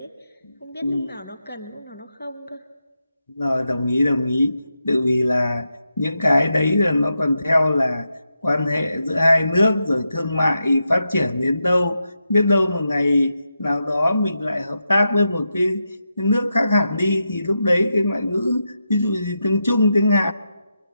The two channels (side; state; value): both; inverted; correlation -0.87